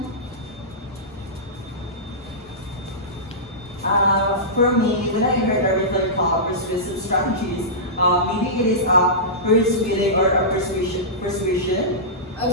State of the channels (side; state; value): both; normal; correlation -0.16